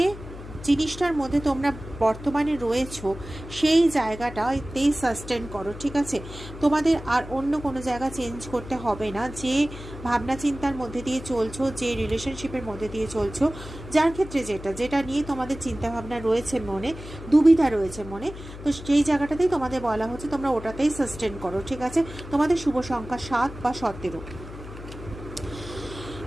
জিনিসটার মধ্যে তোমরা বর্তমানে রয়েছো সেই জায়গাটাতেই সাস্টেন করো, ঠিক আছে? তোমাদের আর অন্য কোনো জায়গা চেঞ্জ করতে হবে না। যে ভাবনা চিন্তার মধ্যে দিয়ে চলছো, যে রিলেশনশিপের মধ্যে দিয়ে চলছো, যার ক্ষেত্রে যেটা নিয়ে তোমাদের চিন্তাভাবনা রয়েছে মনে, দুবিধা রয়েছে মনে, তো সেই জায়গাটাতেই তোমাদের বলা হচ্ছে তোমরা ওটাতেই সাস্টেন করো, ঠিক আছে? তোমাদের শুভ সংখ্যা 7 বা 17।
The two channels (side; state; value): left; noise; hum, 13 dB below the sound